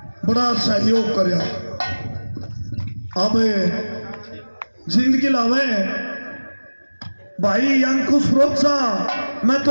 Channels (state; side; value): inverted; both; correlation -1.00